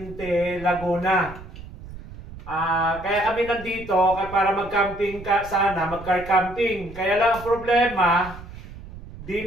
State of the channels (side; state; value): right; noise; rumble, 15 dB below the sound